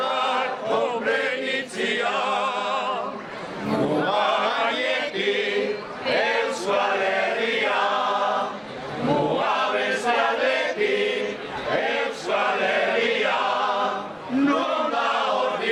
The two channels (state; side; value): identical; both; correlation 1.00